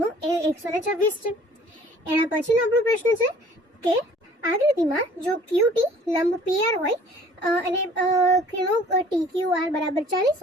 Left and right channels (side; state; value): both; normal; correlation 0.52